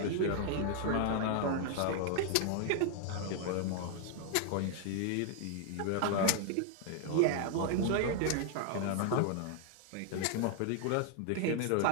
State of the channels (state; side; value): different; both; correlation 0.00